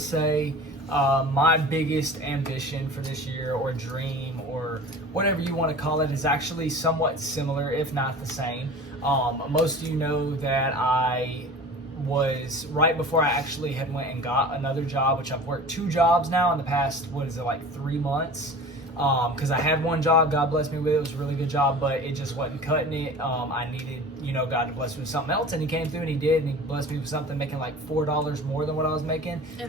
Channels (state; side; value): normal; both; correlation 0.39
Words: my biggest ambition for this year, or dream, or whatever you want to call it, is actually somewhat similar, if not the same. Most of you know that I was, right before I actually had went and got another job, which I've worked 2 jobs now in the past, 3 months. Because I had one job, God bless me with it. It was a really good job, but it just wasn't cutting it. I needed, you know, God to bless me with something else, and He came through and He did, and He blessed me with something making like $4 more than what I was making.